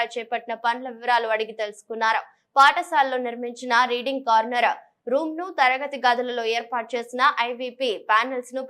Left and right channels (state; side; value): identical; both; correlation 1.00